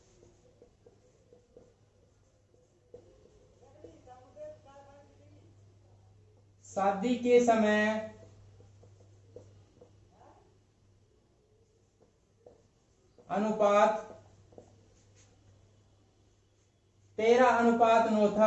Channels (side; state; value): both; identical; correlation 1.00